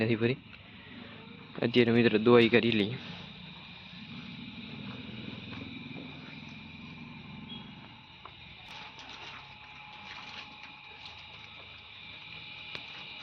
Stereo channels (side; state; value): both; identical; correlation 1.00